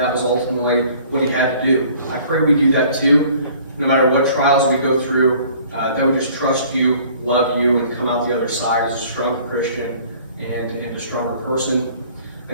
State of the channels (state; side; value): inverted; both; correlation -0.53